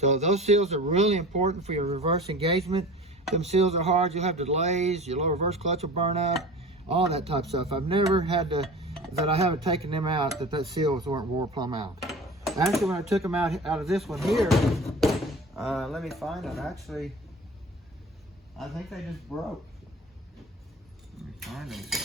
those seals are really important for your reverse engagement. Them seals are hard. You'll have delays. Your low reverse clutch will burn out. All that type of stuff. I've never had to, that I haven't taken them out, that seals weren't wore plumb out. Actually, when I took them out of this one here, let me find them. Actually, I think they just broke. Let me find them.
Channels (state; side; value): normal; both; correlation 0.37